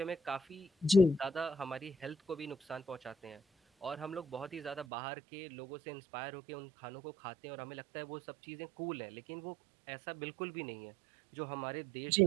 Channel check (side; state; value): left; drops out; at 4.9 s